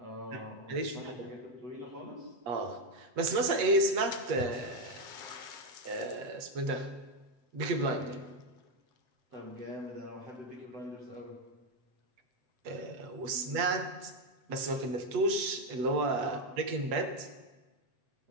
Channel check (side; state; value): left; late; 7.9 ms